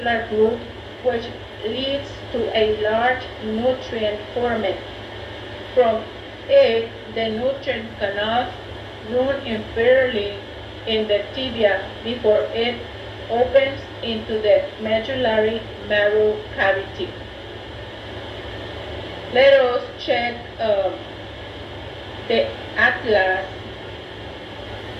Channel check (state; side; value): identical; both; correlation 1.00